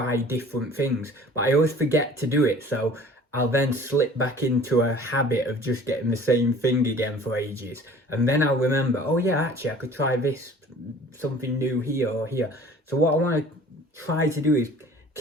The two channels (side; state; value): both; normal; correlation 0.48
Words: different things, but I always forget to do it, so I'll then slip back into a habit of just getting the same thing again for ages, and then I'll remember, oh yeah, actually I could try this, something new here or here. So what I want to try to do is